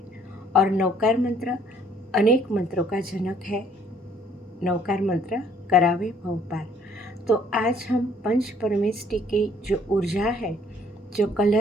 और नवकार मंत्र अनेक मंत्रों का जनक है। नवकार मंत्र करावे भव पार। तो आज हम पंच परमेष्टि की जो ऊर्जा है, जो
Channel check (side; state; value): both; normal; correlation 0.61